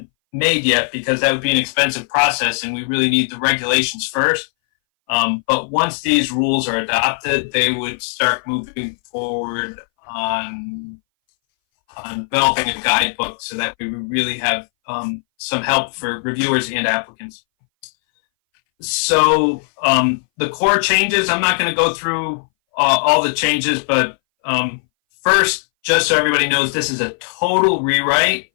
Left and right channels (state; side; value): silent; right; 61 dB below the other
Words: made yet because that would be an expensive process, and we really need the regulations first. But once these rules are adopted, they would start moving forward on developing a guidebook so that we would really have some help for reviewers and applicants. So the core changes, I'm not going to go through all the changes, but first, just so everybody knows, this is a total rewrite.